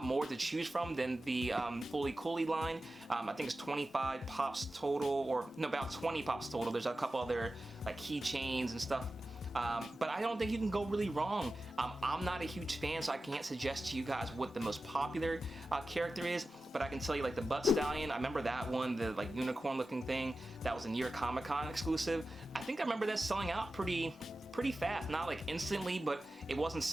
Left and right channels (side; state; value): both; normal; correlation 0.94